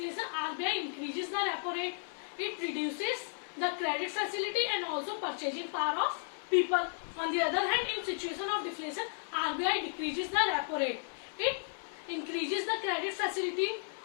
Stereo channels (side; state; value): right; silent; 55 dB below the other